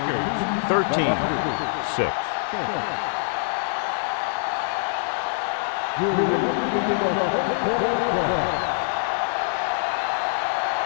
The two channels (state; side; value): silent; right; digital silence